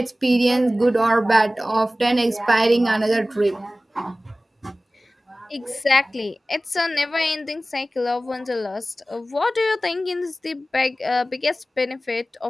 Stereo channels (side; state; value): both; normal; correlation 0.97